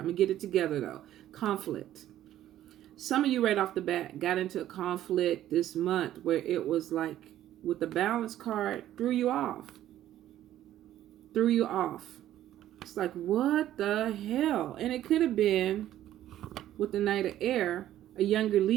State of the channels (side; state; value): left; quieter; 12.6 dB